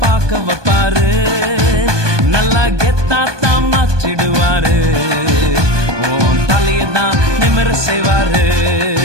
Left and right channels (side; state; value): left; late; 1.2 ms